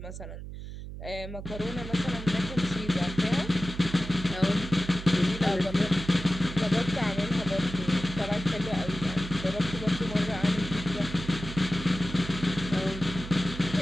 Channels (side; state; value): right; noise; hum, 10 dB below the sound